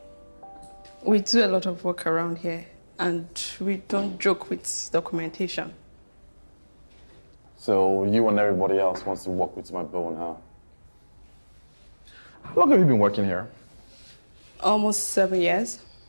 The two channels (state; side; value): inverted; both; correlation -1.00